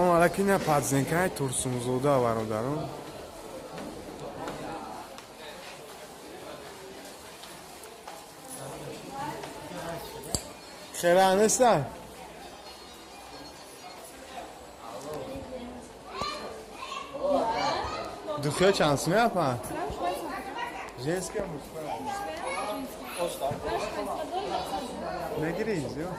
алейкум, ина падзенкаи Турсунзода бародарон. Хера неста? Духе чанд сум япа? Женская, мужская? Negiriz yo.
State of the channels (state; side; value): identical; both; correlation 1.00